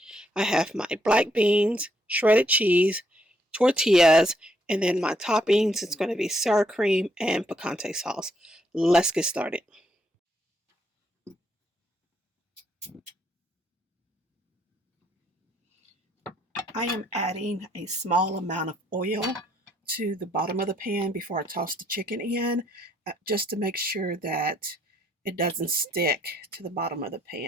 I have my black beans, shredded cheese, tortillas, and then my toppings is going to be sour cream and picante sauce. Let's get started. I am adding a small amount of oil to the bottom of the pan before I toss the chicken in, just to make sure that it doesn't stick to the bottom of the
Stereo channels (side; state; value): both; normal; correlation 0.72